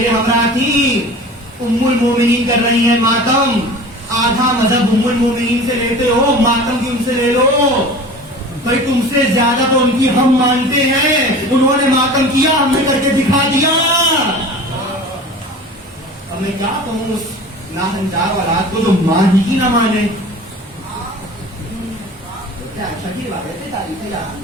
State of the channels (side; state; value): both; normal; correlation 0.39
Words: ہمراہ تھی. ام المومنین کر رہی ہیں ماتم. آدھا مذہب ام المومنین سے لیتے ہو, ماتم بھی ان سے لے لو. بھائی تم سے زیادہ تو ان کی ہم مانتے ہیں, انہوں نے ماتم کیا, ہم نے کر کے دکھا دیا. اب میں کیا کہوں اس ناہنجار اولاد کو جو مان ہی نہ مانے. اچھا کی روایت ہے, تاریخ